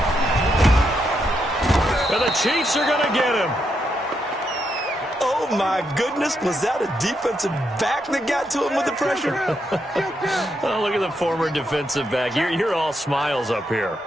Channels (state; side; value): normal; both; correlation 0.80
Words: And the Chiefs are going to get him. Oh, my goodness. Was that a defensive back that got to him with the pressure? Oh, look at the former defensive back. You're all smiles up here.